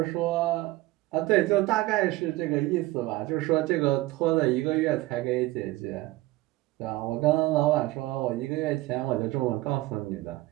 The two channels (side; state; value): left; quieter; 18.9 dB